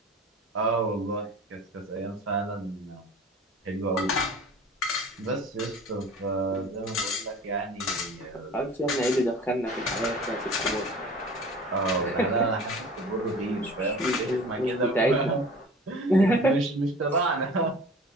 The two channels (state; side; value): normal; both; correlation 0.42